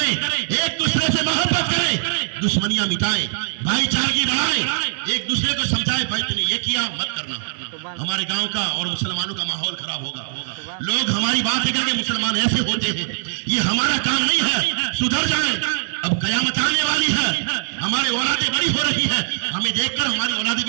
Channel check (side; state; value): left; silent; digital silence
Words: एक दूसरे से मोहब्बत करें, दुश्मनियां मिटाएं, भाईचारगी बढ़ाएं, एक दूसरे को समझाएं भाई तुमने ये किया मत करना, हमारे गांव का और मुसलमानों का माहौल खराब होगा। लोग हमारी बात करके मुसलमान ऐसे होते हैं, ये हमारा काम नहीं है, सुधर जाएं। अब कयामत आने वाली है, हमारी औलादें बड़ी हो रही है, हमें देखकर हमारी औलादें